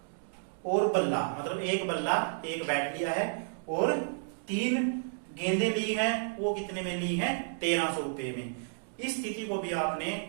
और बल्ला, मतलब एक बल्ला, एक बैट लिया है और 3 गेंदें ली हैं, वो कितने में ली हैं, 1300 रुपए में। इस स्थिति को भी आपने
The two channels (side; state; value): left; silent; digital silence